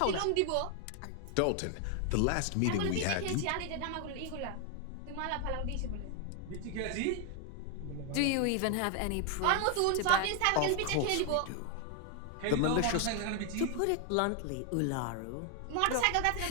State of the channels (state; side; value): different; both; correlation 0.00